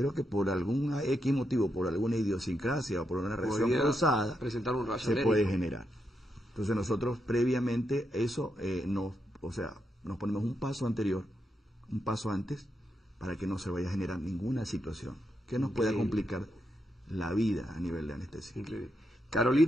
que por algún X motivo, por alguna idiosincrasia o por una reacción cruzada, se puede generar. Entonces nosotros previamente eso nos ponemos un paso anterior, un paso antes, para que no se vaya a generar ninguna situación que nos pueda complicar la vida a nivel de anestesia. Increíble.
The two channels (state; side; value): normal; both; correlation 0.83